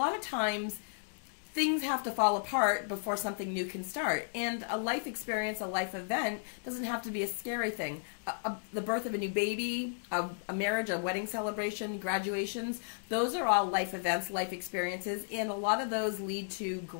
of times things have to fall apart before something new can start. And a life experience, a life event, doesn't have to be a scary thing. The birth of a new baby, a marriage, a wedding celebration, graduations, those are all life events, life experiences, and a lot of those lead to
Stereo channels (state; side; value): silent; right; digital silence